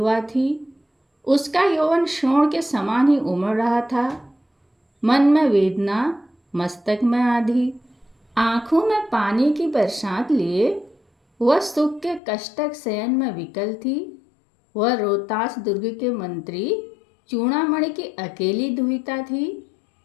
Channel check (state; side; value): drops out; right; at 12.2 s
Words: थी। उसका यौवन शोण के समान ही उमड़ रहा था। मन में वेदना, मस्तक में आधी, आंखों में पानी की बरसात लिए वह सुख के कष्टक शयन में विकल थी। वह रोहतास दुर्ग के मंत्री चूड़ामणि की अकेली दुहिता थी।